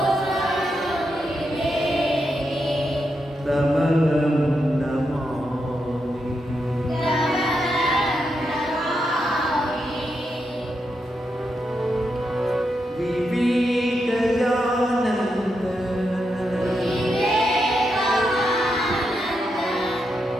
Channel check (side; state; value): both; normal; correlation 0.84